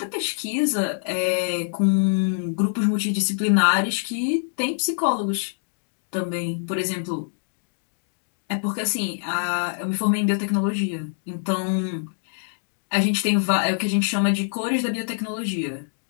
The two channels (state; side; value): silent; right; digital silence